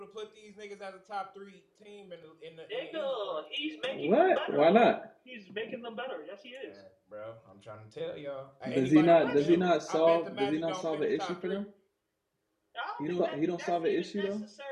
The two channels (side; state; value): both; identical; correlation 1.00